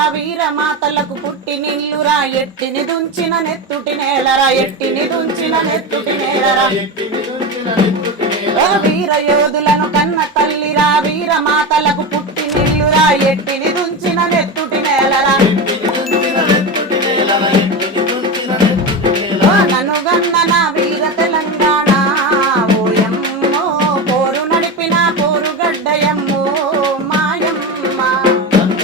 వీర మాతలకు పుట్టి నిల్లురా ఎట్టిని దుంచిన నెత్తుటి నేలరా ఎట్టిని దుంచిన నెత్తుటి నేలరా వీర యోధులను కన్న తల్లిరా వీర మాతలకు పుట్టి నిల్లురా ఎట్టిని దుంచిన నెత్తుటి నేలరా నన్ను గన్న నా వీర తెలంగాణ ఓయమ్మో పోరు నడిపిన పోరుగడ్డయమ్మో మాయమ్మ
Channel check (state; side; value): normal; both; correlation 0.20